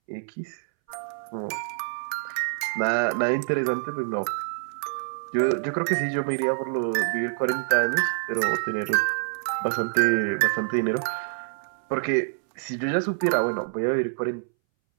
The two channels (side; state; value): left; silent; 61 dB below the other